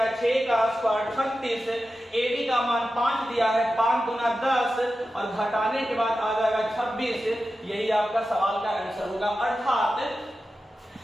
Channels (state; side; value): normal; both; correlation 0.92